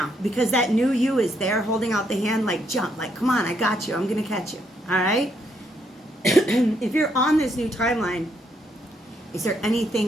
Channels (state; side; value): normal; both; correlation 0.74